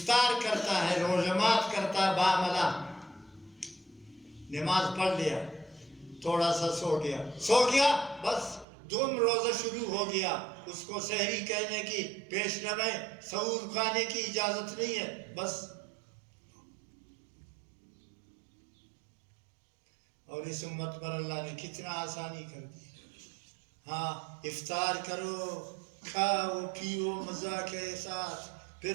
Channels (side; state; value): left; drops out; at 8.7 s